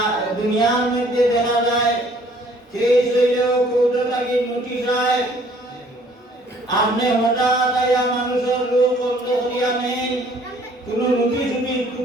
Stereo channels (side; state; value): both; normal; correlation 0.59